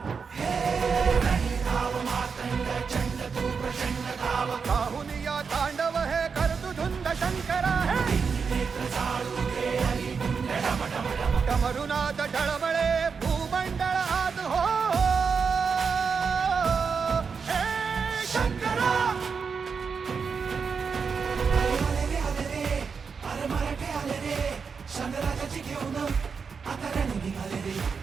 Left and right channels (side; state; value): left; quieter; 5.6 dB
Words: साहुनिया तांडव हे करतु धुंद शंकरा डमरुनाथ डळमळे भूमंडळ हात हो शंकराची घेऊन आता रणी निघाले रे.